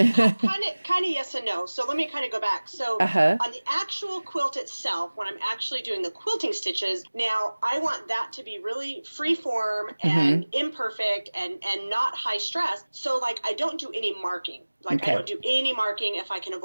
of yes and no. So let me kind of go back. So on the actual quilt itself, when I'm actually doing the quilting stitches, now I want that to be really free form and imperfect and not high stress. So I don't do any marking. I don't do any marking if I can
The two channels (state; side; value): inverted; both; correlation -1.00